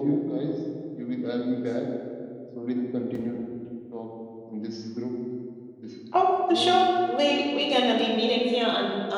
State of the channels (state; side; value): identical; both; correlation 1.00